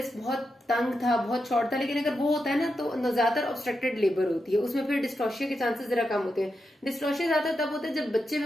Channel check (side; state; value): both; normal; correlation 0.87